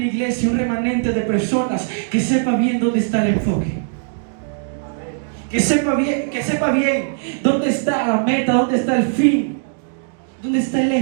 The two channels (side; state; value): left; silent; digital silence